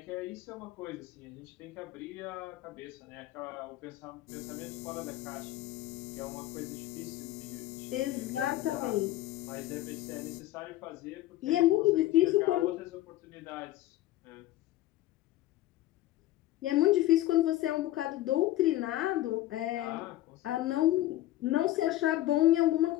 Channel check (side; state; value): right; quieter; 15.3 dB